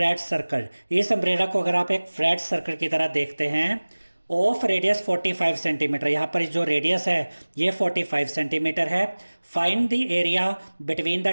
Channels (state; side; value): inverted; both; correlation -1.00